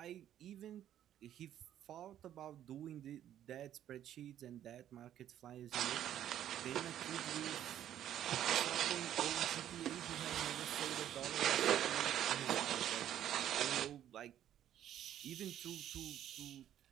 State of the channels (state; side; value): quieter; left; 11.1 dB